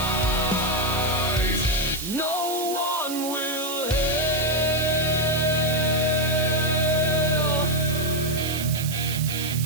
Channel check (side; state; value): right; noise; hiss, 7 dB below the sound